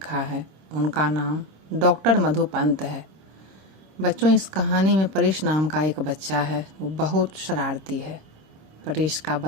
है उनका नाम डॉक्टर मधु पंत है। बच्चों, इस कहानी में परेश नाम का एक बच्चा है। वो बहुत शरारती है। परेश का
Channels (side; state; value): left; late; 26 ms